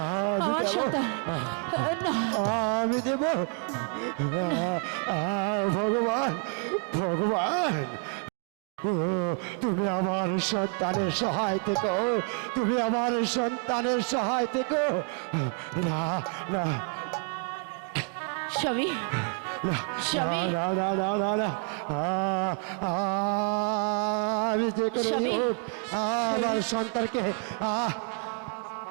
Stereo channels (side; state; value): left; quieter; 37.6 dB